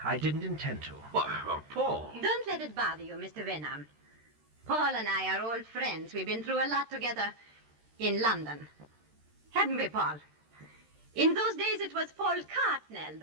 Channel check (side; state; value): left; late; 13 ms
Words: I didn't intend to. Why, Paul. Don't let it bother you, Mr. Wenham. Paul and I are old friends. We've been through a lot together in London. Haven't we, Paul? In those days, it was Paul Cartnell,